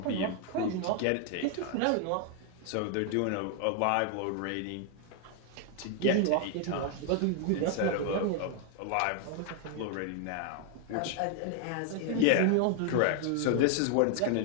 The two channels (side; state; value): both; different; correlation 0.00